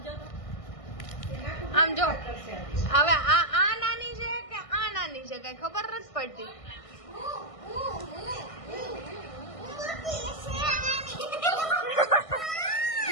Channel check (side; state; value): right; late; 1.6 ms